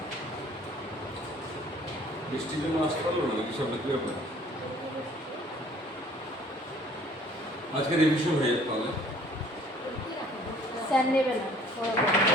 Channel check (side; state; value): both; normal; correlation 0.55